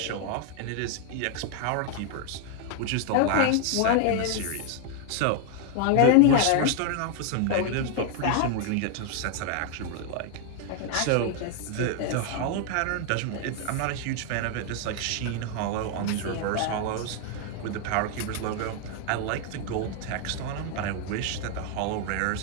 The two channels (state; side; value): different; both; correlation 0.01